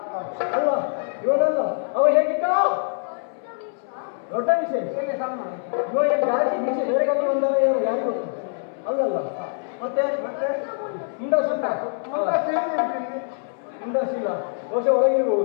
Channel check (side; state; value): right; silent; 63 dB below the other